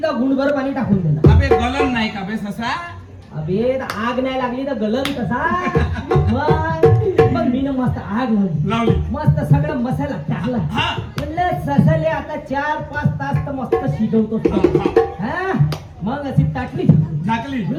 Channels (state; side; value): identical; both; correlation 1.00